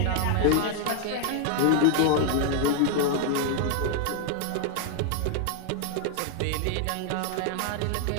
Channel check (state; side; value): different; both; correlation 0.00